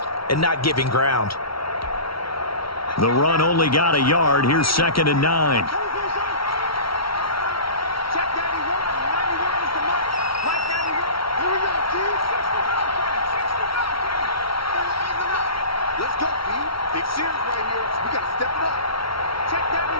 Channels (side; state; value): right; late; 0.75 ms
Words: and not giving ground. The run only got a yard. Here's 2nd and 9.